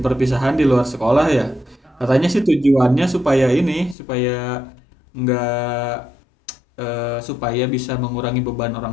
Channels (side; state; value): right; drops out; at 4.0 s